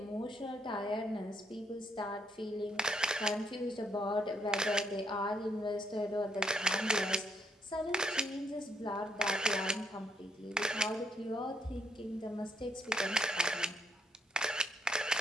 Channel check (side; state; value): both; normal; correlation 0.73